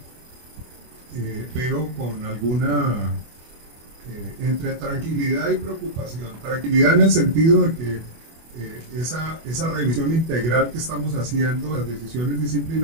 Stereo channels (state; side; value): late; left; 24 ms